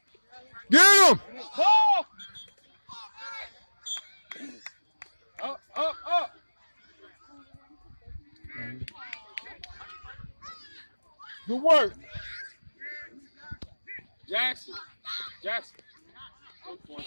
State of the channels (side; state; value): both; inverted; correlation -1.00